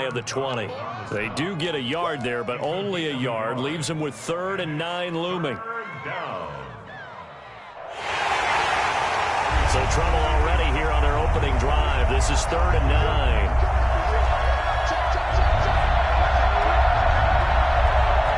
of the 20. They do get a yard there, but only a yard. Leaves them with 3rd and 9 looming. So trouble already here on their opening drive. This is 3rd and 9.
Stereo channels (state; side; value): identical; both; correlation 1.00